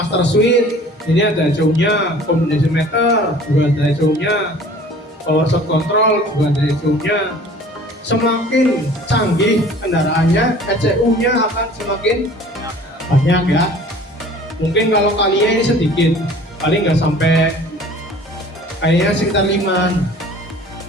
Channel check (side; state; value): both; normal; correlation 0.47